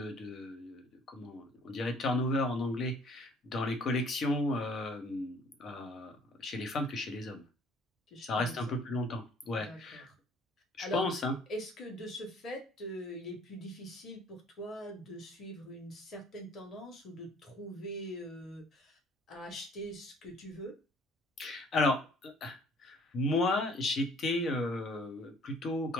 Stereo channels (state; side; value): normal; both; correlation 0.56